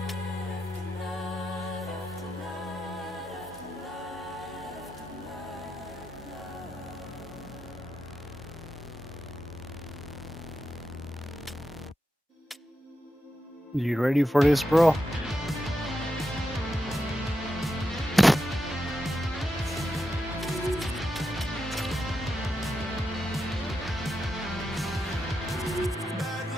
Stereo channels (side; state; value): both; normal; correlation 0.87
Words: You ready for this, bro?